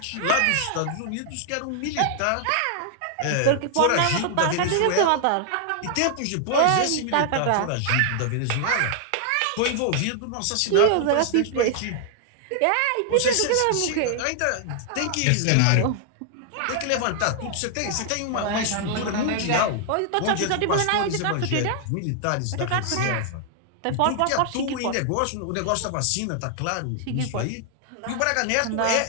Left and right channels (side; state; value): both; different; correlation 0.00